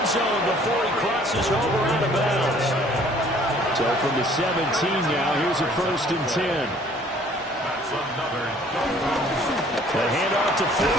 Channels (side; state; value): both; normal; correlation 0.56